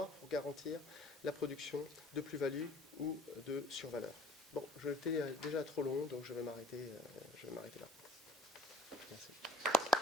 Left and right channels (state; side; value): normal; both; correlation 0.55